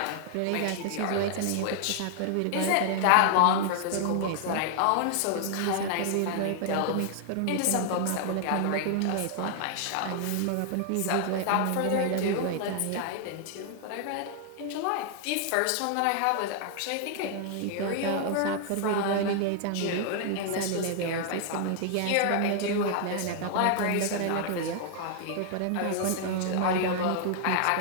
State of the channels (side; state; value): both; different; correlation 0.00